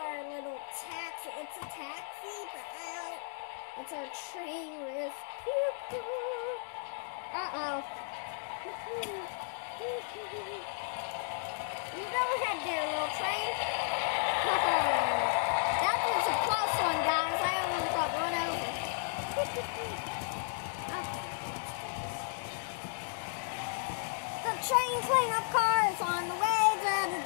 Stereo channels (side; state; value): right; silent; digital silence